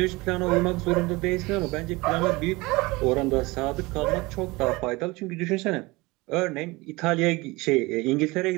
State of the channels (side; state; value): left; quieter; 22.8 dB